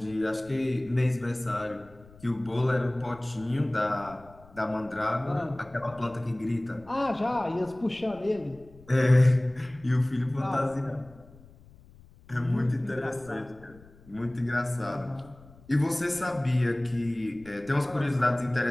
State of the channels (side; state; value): left; noise; rumble, 23 dB below the sound